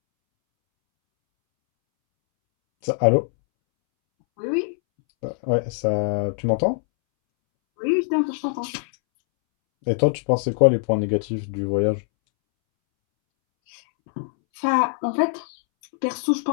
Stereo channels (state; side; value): silent; right; 64 dB below the other